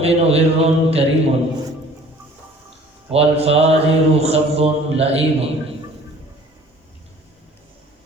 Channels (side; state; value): both; normal; correlation 0.51